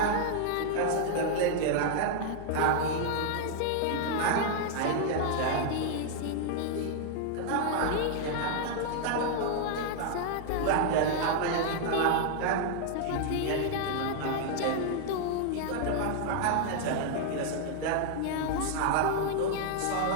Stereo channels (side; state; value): both; different; correlation 0.00